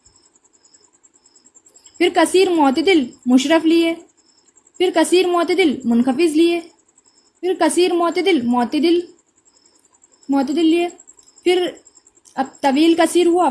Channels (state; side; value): identical; both; correlation 1.00